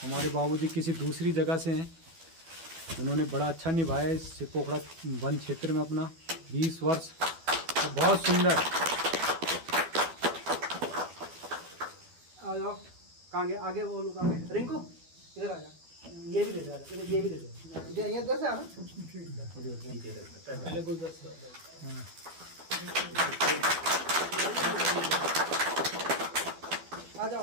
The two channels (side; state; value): left; late; 12 ms